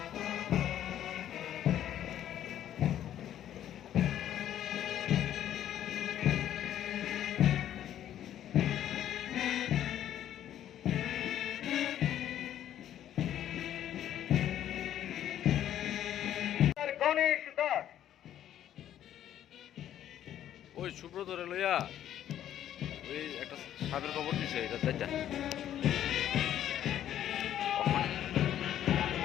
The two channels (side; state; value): right; quieter; 11.2 dB